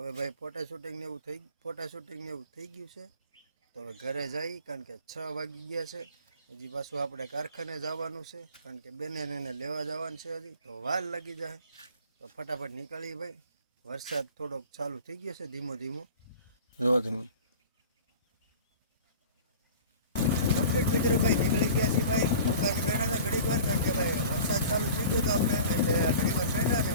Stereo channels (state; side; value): inverted; both; correlation -0.41